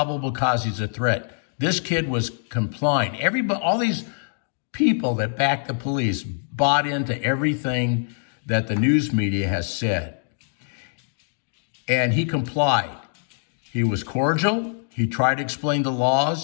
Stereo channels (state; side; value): silent; right; digital silence